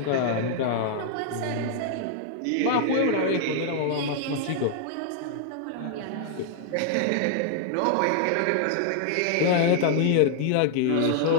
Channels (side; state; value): both; different; correlation 0.00